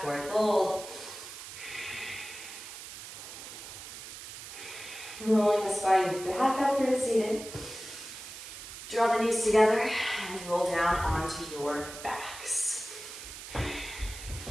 forward fold. Rolling the spine back up through to seated. Draw the knees together and roll down onto your backs.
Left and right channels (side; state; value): right; noise; hiss, 12 dB below the sound